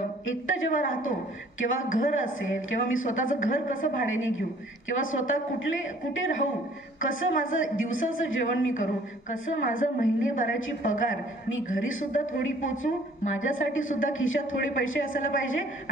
एकटं जेव्हा राहतो, किंवा घर असेल, किंवा मी स्वतःचं घर कसं भाड्याने घेऊ, किंवा स्वतः कुठे राहू, कसं माझं दिवसाचं जेवण मी करू, कसं माझं महिनेभराची पगार मी घरी सुद्धा थोडी पोचू, माझ्यासाठी सुद्धा खिशात थोडे पैसे असायला पाहिजे,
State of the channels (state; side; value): normal; both; correlation 0.56